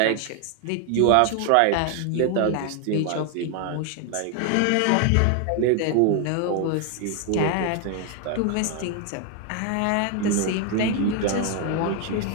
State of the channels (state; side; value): different; both; correlation 0.01